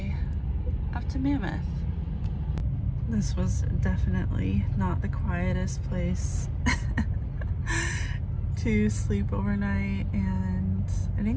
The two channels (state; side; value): identical; both; correlation 1.00